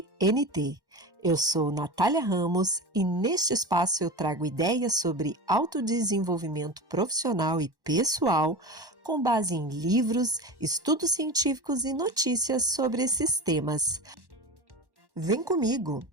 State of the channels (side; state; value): left; late; 1.1 ms